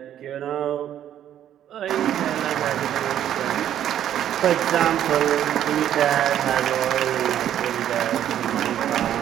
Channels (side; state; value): left; quieter; 10.8 dB